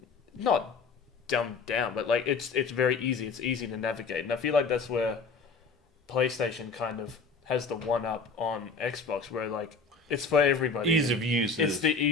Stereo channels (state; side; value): quieter; right; 4.5 dB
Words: not dumbed down, but like it's very easy. It's easy to navigate, and I feel like that's where PlayStation kind of has the one up on Xbox, where like it's for everybody. Ease of use. It's the